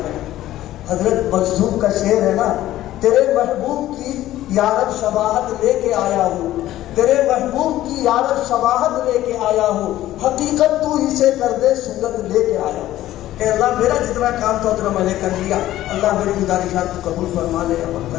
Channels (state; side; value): quieter; right; 14.2 dB